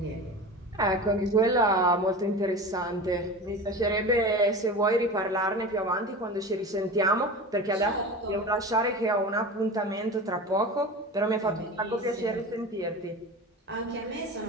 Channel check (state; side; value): normal; both; correlation 0.31